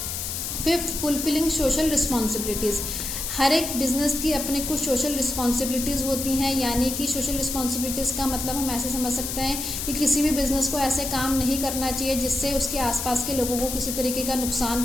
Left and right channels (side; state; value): left; noise; hiss, 4 dB below the sound